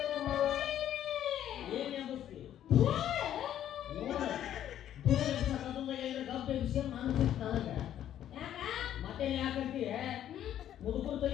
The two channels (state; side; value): quieter; right; 11.1 dB